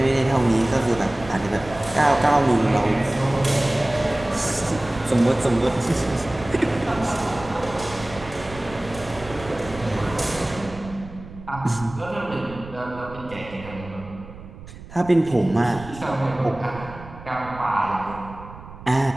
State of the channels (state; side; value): noise; right; rumble, 16 dB below the sound